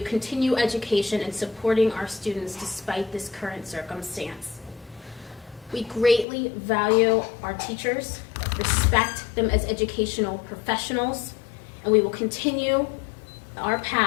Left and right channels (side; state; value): right; drops out; at 6.2 s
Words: education and supporting our students despite this current circumstance. We greatly value our teachers, respect them as educational professionals, and we will continue our